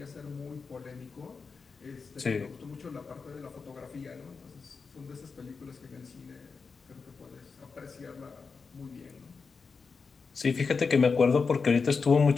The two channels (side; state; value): right; quieter; 4.9 dB